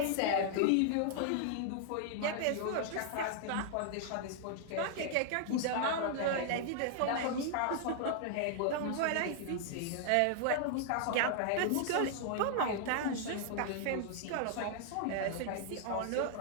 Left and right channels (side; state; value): both; different; correlation -0.01